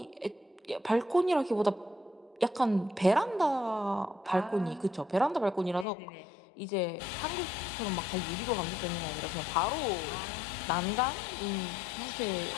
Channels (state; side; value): drops out; right; at 5.9 s